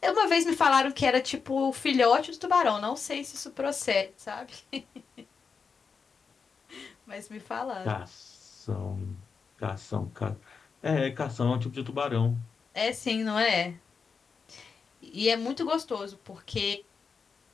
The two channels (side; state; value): right; quieter; 5.5 dB